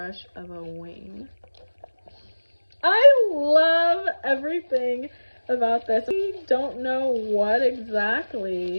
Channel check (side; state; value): both; inverted; correlation -1.00